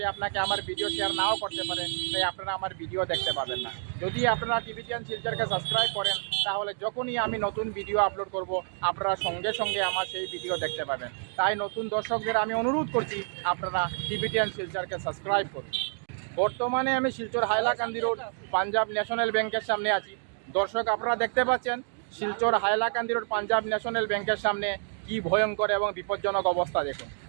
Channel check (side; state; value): left; silent; 57 dB below the other